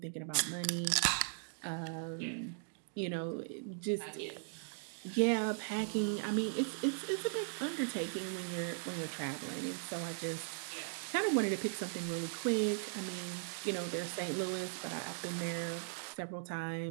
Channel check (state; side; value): silent; left; digital silence